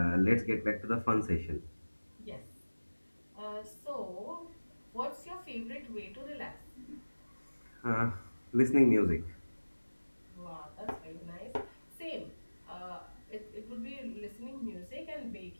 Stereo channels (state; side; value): inverted; both; correlation -1.00